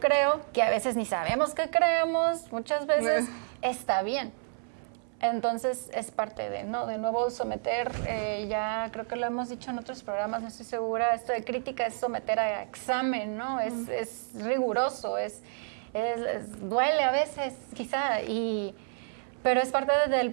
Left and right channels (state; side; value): silent; left; 58 dB below the other